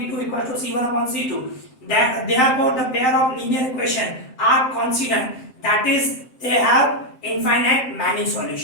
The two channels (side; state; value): right; late; 7.7 ms